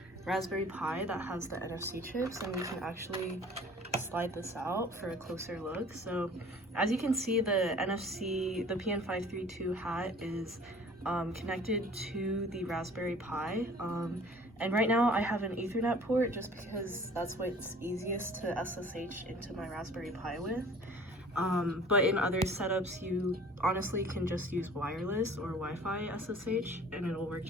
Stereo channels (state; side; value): normal; both; correlation 0.49